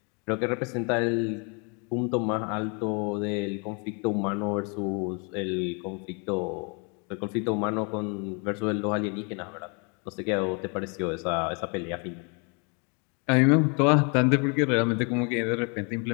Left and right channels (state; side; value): quieter; right; 34.9 dB